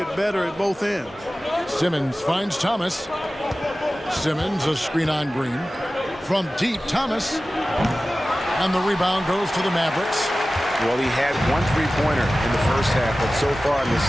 better at both ends. Simmons finds Thomas. Simmons a screen on Green. From deep, Thomas. And the rebound goes to the Mavericks. Well, he had 1 3-pointer in the first half, but so far in the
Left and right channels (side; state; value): both; normal; correlation 0.96